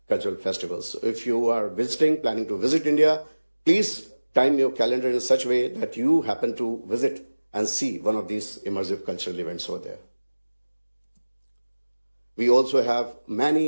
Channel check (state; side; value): inverted; both; correlation -1.00